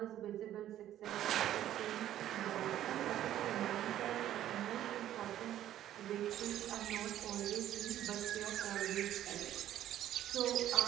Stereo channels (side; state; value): left; quieter; 12.2 dB